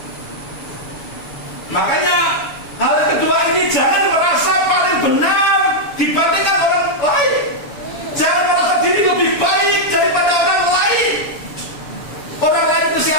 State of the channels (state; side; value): late; right; 6.9 ms